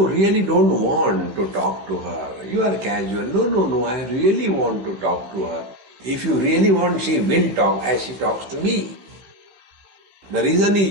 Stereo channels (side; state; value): left; late; 16 ms